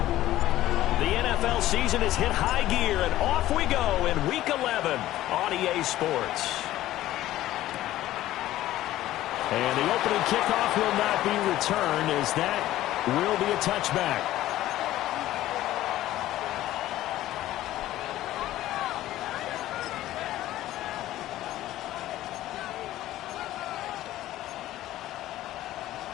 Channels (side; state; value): right; quieter; 14.7 dB